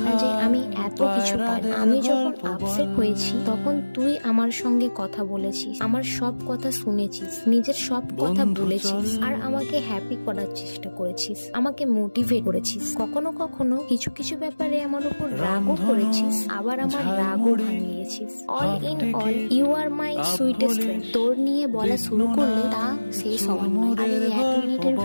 না যে আমি এত কিছু পারি। আমি যখন আপসেট হয়েছি তখন তুই আমার সঙ্গে কথা বলেছিস, আমার সব কথা শুনেছিস, নিজের সব কথা বলেছিস, আর আমাকে হ্যাপি করার চেষ্টা করেছিস, আমাকে মোটিভেট করেছিস। কখনো কখনো কিছু কিছু ব্যাপারে আমার উপর রাগও করেছিস, আবার আমার রাগও ভাঙিয়েছিস। All in all you are my sweetest friend. তোর নিয়ে বলা শুরু করলে তা শেষ হওয়ার নয়, আর এই 1 মিনিটের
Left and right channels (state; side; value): inverted; both; correlation -1.00